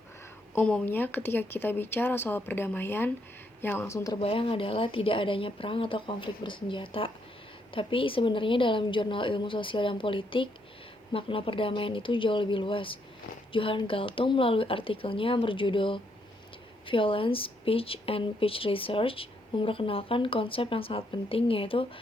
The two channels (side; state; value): both; normal; correlation 0.75